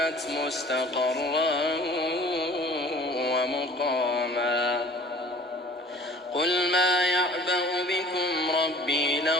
مستقرا ومقاما قل ما يعبأ بكم ربي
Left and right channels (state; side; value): normal; both; correlation 0.48